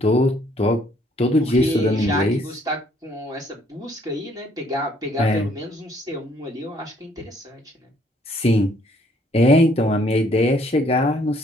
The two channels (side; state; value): both; normal; correlation 0.64